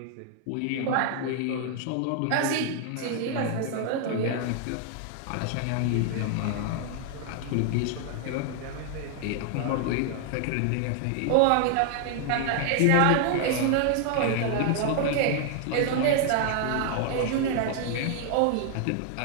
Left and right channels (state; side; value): different; both; correlation 0.00